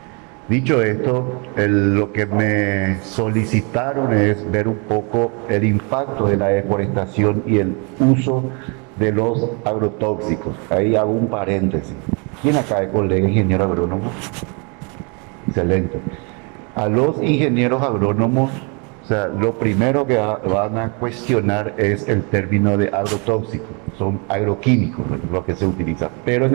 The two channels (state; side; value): quieter; left; 33.7 dB